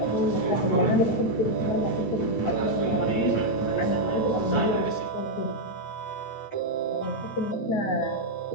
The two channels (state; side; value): late; right; 9.1 ms